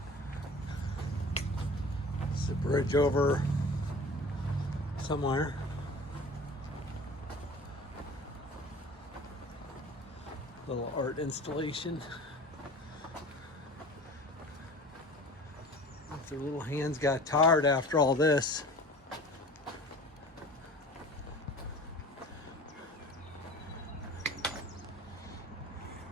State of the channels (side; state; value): both; normal; correlation 0.41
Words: It's a bridge over somewhere. Little art installation. If their little hands got tired after all this.